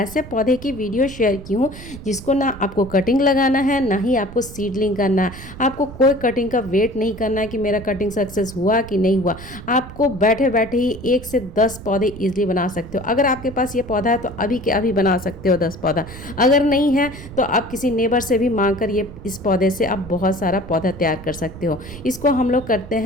पौधे की वीडियो शेयर की हूँ जिसको ना आपको कटिंग लगाना है, ना ही आपको सीडलिंग करना है। आपको कोई कटिंग का वेट नहीं करना है कि मेरा कटिंग सक्सेस हुआ कि नहीं हुआ। आपको बैठे बैठे ही 1 से 10 पौधे ईजिली बना सकते हो। अगर आपके पास ये पौधा है तो अभी के अभी बना सकते हो 10 पौधा। अगर नहीं है तो आप किसी नेबर से भी मांग कर ये इस पौधे से आप बहुत सारा पौधा तैयार कर सकते हो। इसको हम लोग करते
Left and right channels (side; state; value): right; noise; rumble, 15 dB below the sound